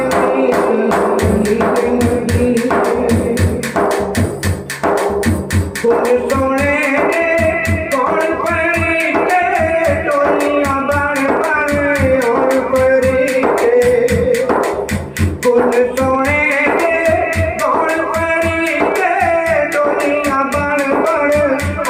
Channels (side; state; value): both; identical; correlation 1.00